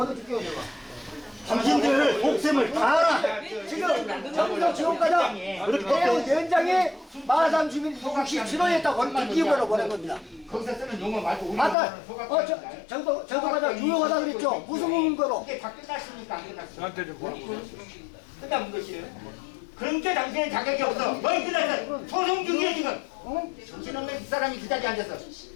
내가. 당신들 복sem을 다 알아. 지금 정부도 지원과장 위원장이 마산 주민 67호였다고 기업으로 보낸 겁니다. 거기서 쓰는 용어 말고 우리 아까 정도과장 유용하다 그랬죠. 무슨 근거로? 이게 다 끝났습니까? 안 끝났습니까? 끝난 것이에요. 그런데 당신은 자격이 없어. 뭘 끝났어? 소송 중이야 지금. 정신없는 이 사람이 그 자리에 앉아서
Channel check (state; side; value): drops out; right; at 11.8 s